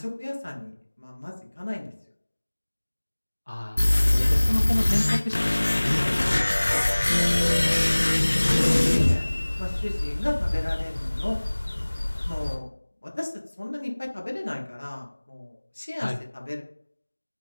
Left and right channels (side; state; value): both; inverted; correlation -1.00